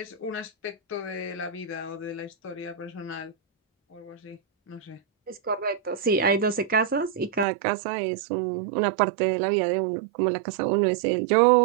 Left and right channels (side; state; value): left; drops out; at 7.5 s